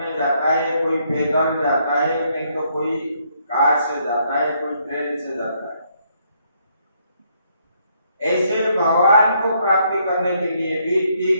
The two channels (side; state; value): both; inverted; correlation -0.72